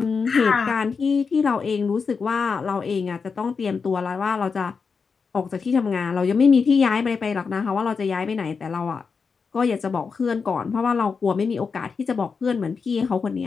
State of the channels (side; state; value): right; quieter; 5.3 dB